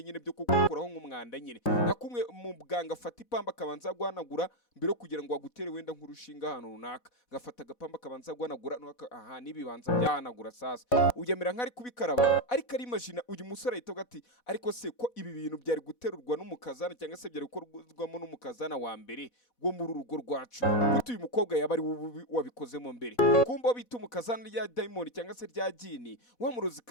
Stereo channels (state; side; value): late; right; 4.1 ms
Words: nyine byo kukuraho nk'umwanda nyine nakumwe mu bwanga afata ipamba kabanza guhanagura mbere kugira ngo agutere wenda nk'urushinga hano runaka gafata agapamba kabanza guhanagura aha nibibanza byahanagura sasa uyemera nk'ari kubikaraba ariko ari imagine uyu musore ahita ati ariko se ko ibi bintu byari guterurwa n'umukazana cyangwa se byari gukorwamo n'umukazana wa mbere go muri urugo rwacu gutu uyu mukobwa yaba ari wabikozemo mbere kumba bita umukazana rya Dayimoni cyangwa se rya Jini wa